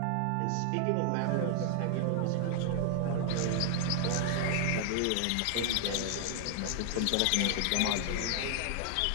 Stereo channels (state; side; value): different; both; correlation 0.00